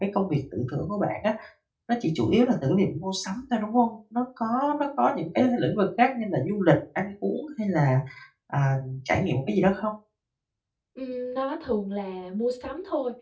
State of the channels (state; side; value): identical; both; correlation 1.00